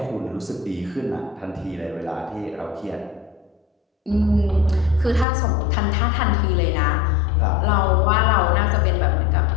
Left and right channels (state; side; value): drops out; right; at 5.2 s